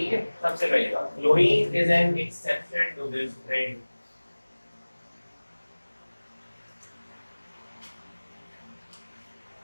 है, सबसे पहले बात, chlorine is an exception to this trend.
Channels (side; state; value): both; inverted; correlation -1.00